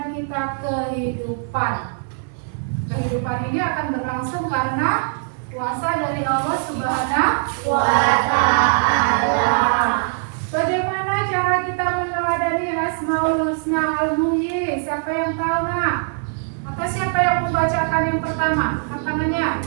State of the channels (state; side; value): silent; left; 65 dB below the other